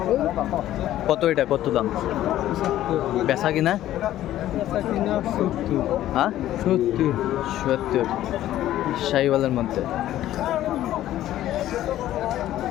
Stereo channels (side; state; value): right; quieter; 13.4 dB